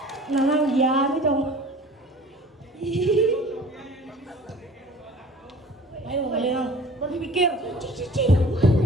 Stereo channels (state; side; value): normal; both; correlation 0.46